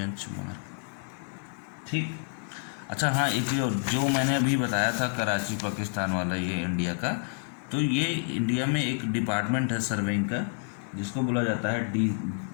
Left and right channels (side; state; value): right; silent; 59 dB below the other